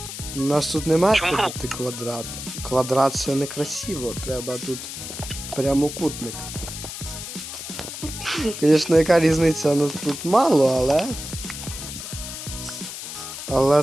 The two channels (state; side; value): noise; left; hiss, 9 dB below the sound